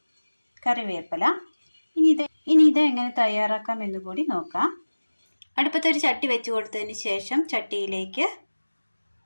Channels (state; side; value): inverted; both; correlation -1.00